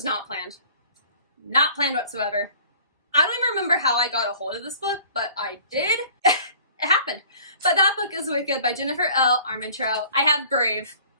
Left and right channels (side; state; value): both; inverted; correlation -0.49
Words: not planned. Not planned whatsoever. I don't even remember how I got a hold of this book, but I did. It happened. But that book is Wicked by Jennifer L. Armentrout. I have Brave,